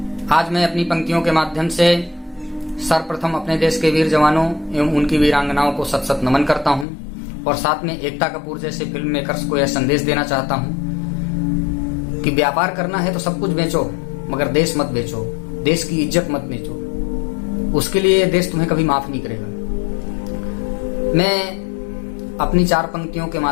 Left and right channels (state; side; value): drops out; right; at 6.9 s